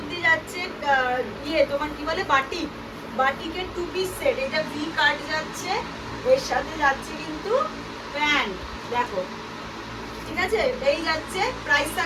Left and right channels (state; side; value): identical; both; correlation 1.00